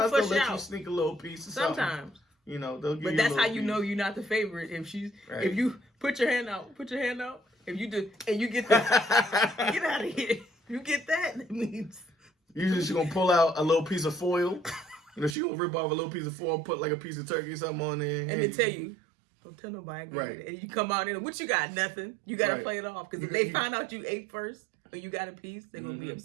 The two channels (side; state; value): left; drops out; at 15.4 s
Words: they'll push let you out. sneak a little piece. Of something. Sometimes. They'll give But you. that's a how you piece. know you're not the favorite. Right. If you put your hand out. If you do, and you get that, get out of here. You get that means. Usually she's gonna pull out a little piece of foil. She gonna rip off a little piece of foil, put like a piece of turkey or something on there, And then tell you, don't tell nobody. Right. And you come out in, what you got? Nothing. You got to Right. play it off. Because if they find out you ate first or you got a piece, they're going to be